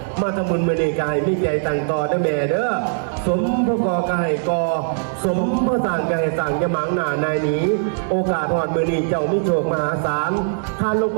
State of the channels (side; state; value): left; silent; digital silence